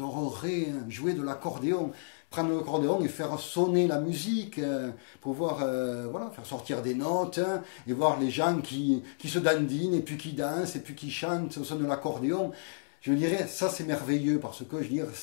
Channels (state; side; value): silent; right; digital silence